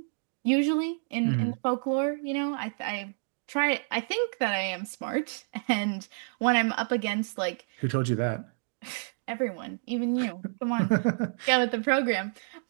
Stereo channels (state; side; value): silent; left; digital silence